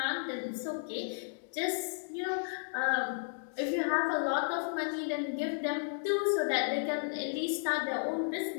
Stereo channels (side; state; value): right; silent; digital silence